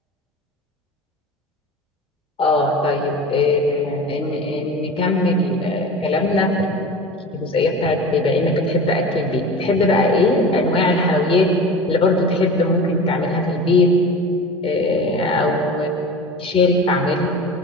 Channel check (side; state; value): both; normal; correlation 0.34